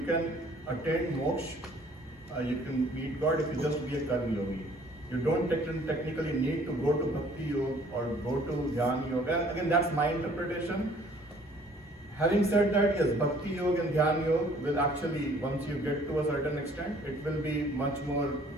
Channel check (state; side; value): normal; both; correlation 0.57